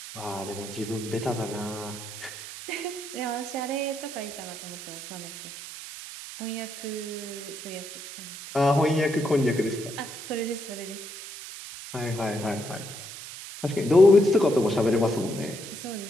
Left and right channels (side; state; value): right; noise; hiss, 11 dB below the sound